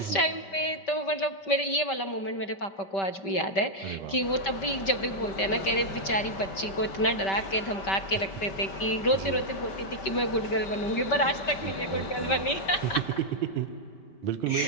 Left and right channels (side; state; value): right; late; 5.2 ms